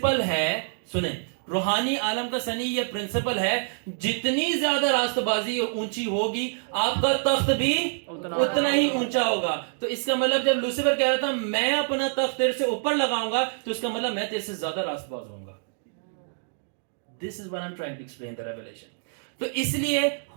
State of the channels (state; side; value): silent; left; digital silence